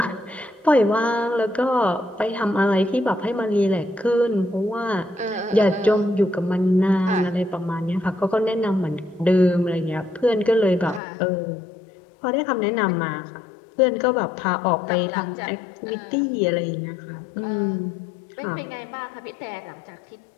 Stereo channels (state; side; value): drops out; right; at 11.0 s